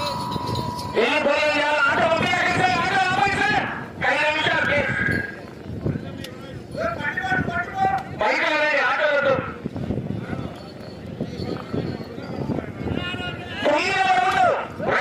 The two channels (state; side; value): identical; both; correlation 1.00